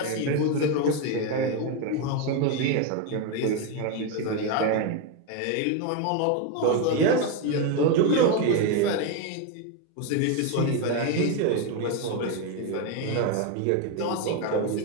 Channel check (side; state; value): both; different; correlation 0.02